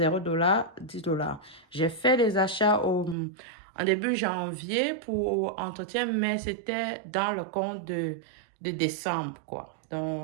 $, 10 $. J'ai fait des achats en début janvier pour entretien, mais c'était dans le compte de décembre, quoi.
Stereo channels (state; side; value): drops out; left; at 3.2 s